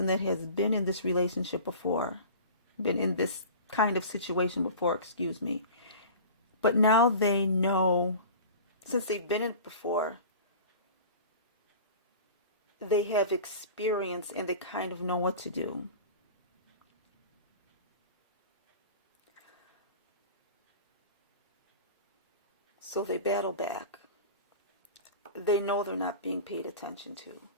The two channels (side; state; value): both; inverted; correlation -0.37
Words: that has been in this relationship before, been in this kind of situation before, excuse me. But now they know, since they've been in it before, they have experience and they kind of know what to do. So they battle back. They know they're not being paid attention to.